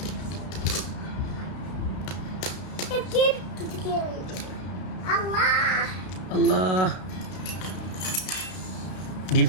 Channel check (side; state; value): right; late; 32 ms